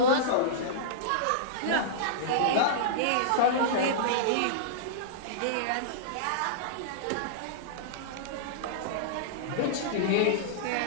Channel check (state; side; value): different; both; correlation -0.03